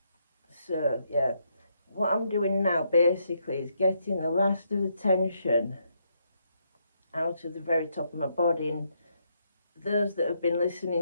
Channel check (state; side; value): inverted; both; correlation -0.76